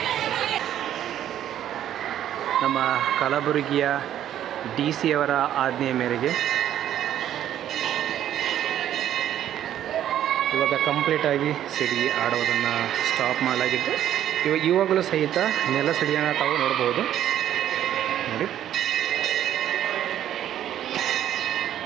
ನಮ್ಮ ಕಲಬುರಗಿಯ DC ಅವರ ಆಜ್ಞೆಯ ಮೇರೆಗೆ ಇವಾಗ ಕಂಪ್ಲೀಟಾಗಿ ಸಿಡಿ ಆಡೋದನ್ನು ಸ್ಟಾಪ್ ಮಾಡಲಾಗಿದ್ದು, ಇವಾಗಲೂ ಸಹಿತ ನೆಲ ಸಿಡಿಯನ್ನು ತಾವು ನೋಡ್ಬೋದು. ನೋಡಿ,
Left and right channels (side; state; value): left; quieter; 11.2 dB